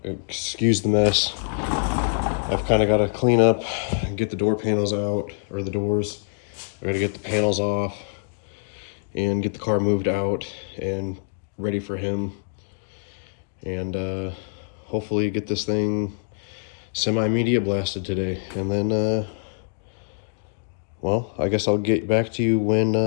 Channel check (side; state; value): right; silent; digital silence